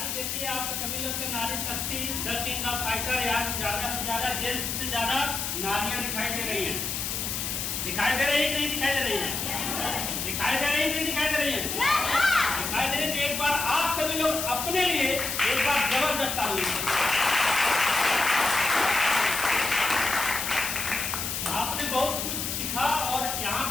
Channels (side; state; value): left; noise; hiss, 3 dB below the sound